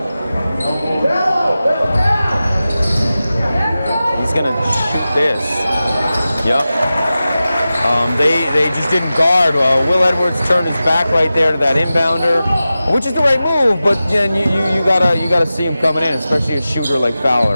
This. Yep. They just didn't guard. Will Edwards turned his back right there to that inbounder, which is the right move. But then you gotta see him coming in, especially a shooter like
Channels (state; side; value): inverted; both; correlation -0.94